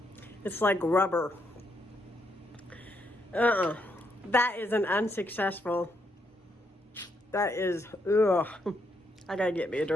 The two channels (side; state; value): both; normal; correlation 0.77